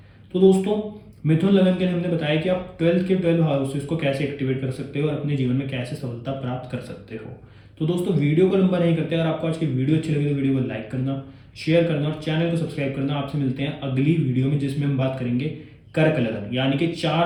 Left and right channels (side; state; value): both; identical; correlation 1.00